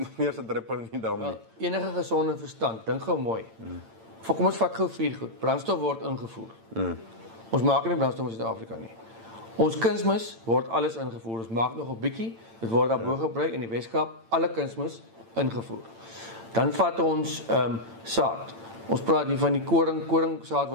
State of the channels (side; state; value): left; late; 8.9 ms